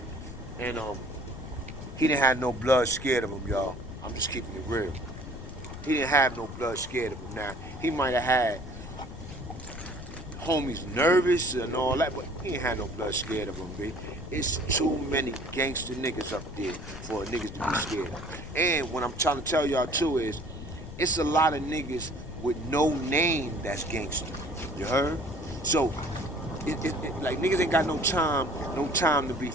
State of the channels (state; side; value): noise; left; rumble, 11 dB below the sound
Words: And he didn't have no blood scared of him, y'all. I'm just keeping it real. He didn't have no blood scared of him. Now, he might have had homies nervous and all that, but he ain't had no blood scared of him, B. It's too many gangster niggas up there for niggas to be scared. And what I'm trying to tell y'all too is, it's a lot of niggas with no name that's gangster. You heard? So, like niggas ain't got no time to be